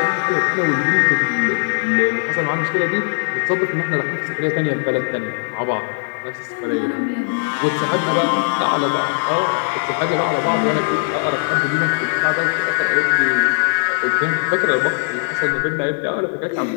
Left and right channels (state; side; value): silent; right; 63 dB below the other